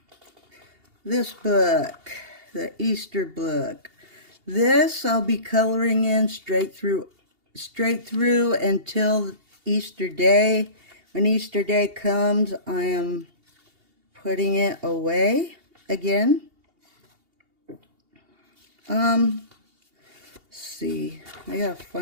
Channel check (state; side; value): late; left; 2.8 ms